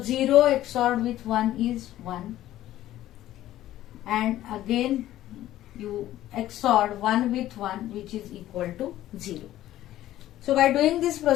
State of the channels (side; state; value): right; quieter; 13.9 dB